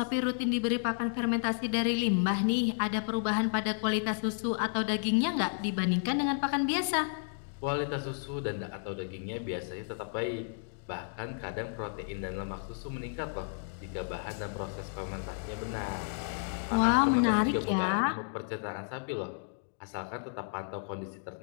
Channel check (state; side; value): silent; right; digital silence